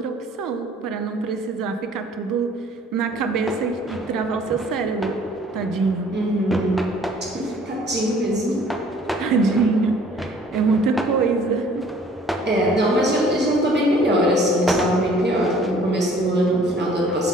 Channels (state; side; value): normal; both; correlation 0.55